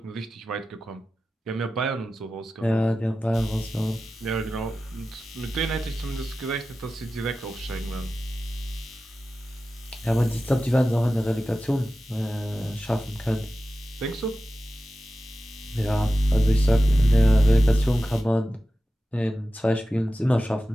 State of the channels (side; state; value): both; normal; correlation 0.94